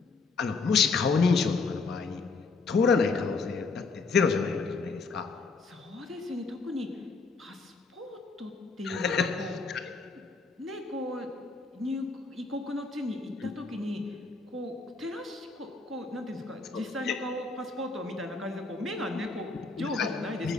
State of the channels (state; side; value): quieter; right; 4.2 dB